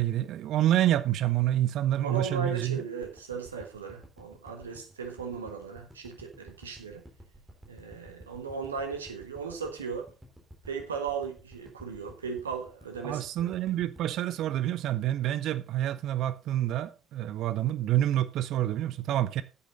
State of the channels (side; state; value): left; quieter; 10.8 dB